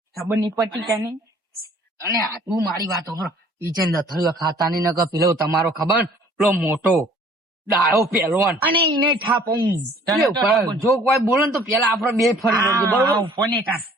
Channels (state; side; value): normal; both; correlation 0.55